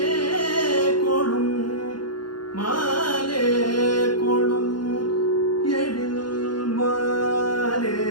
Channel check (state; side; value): late; right; 0.71 ms